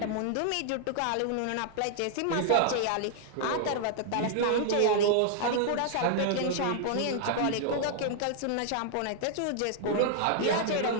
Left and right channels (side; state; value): both; different; correlation 0.00